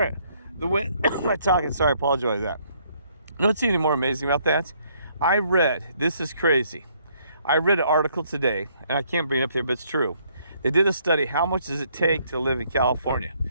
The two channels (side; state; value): both; inverted; correlation -0.67